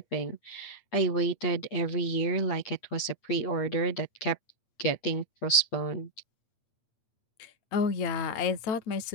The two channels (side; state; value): right; late; 8.4 ms